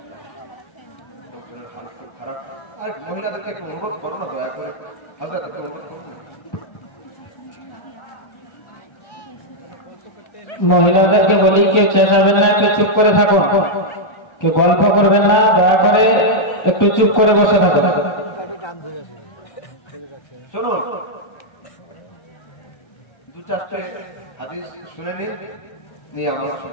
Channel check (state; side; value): late; right; 1.3 ms